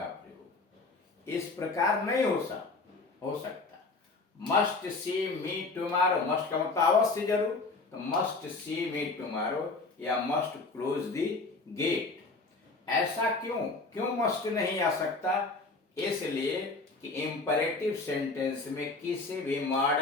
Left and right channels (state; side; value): quieter; right; 3.6 dB